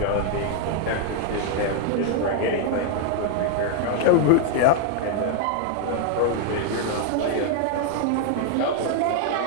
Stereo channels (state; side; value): different; both; correlation 0.00